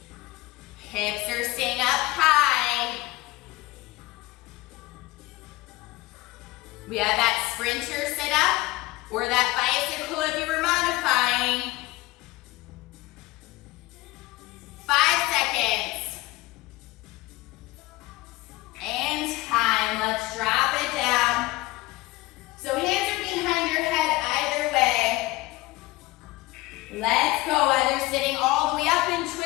Hips are staying up high. We have that sprinter sit up or that bicycle if you were modifying. 5 seconds. And time. Let's drop it down. So hands are behind your head either way. Let's go. Either sitting all the way up and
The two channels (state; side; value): quieter; right; 20.2 dB